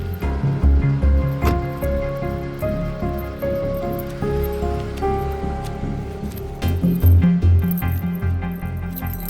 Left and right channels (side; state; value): both; identical; correlation 1.00